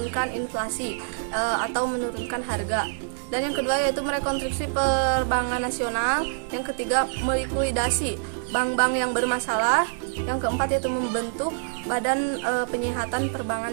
inflasi atau menurunkan harga. Dan yang kedua yaitu merekonstruksi perbankan nasional. Yang ketiga melikuidasi bank-bank yang bermasalah. Yang keempat yaitu membentuk Badan Penyihatan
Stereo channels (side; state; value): left; silent; digital silence